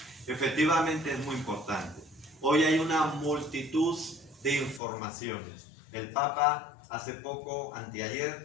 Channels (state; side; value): drops out; right; at 4.8 s